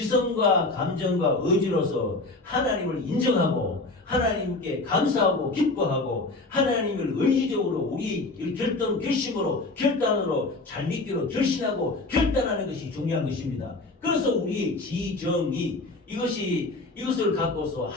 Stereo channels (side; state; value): right; quieter; 3.2 dB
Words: 감정과 의지로서 하나님을 인정하고 하나님께 감사하고 기뻐하고 하나님을 의지적으로 우리 결심으로 결단으로 잘 믿기로 결심하고 결단하는 것이 중요한 것입니다. 그래서 우리의 지정이 이것을 갖고서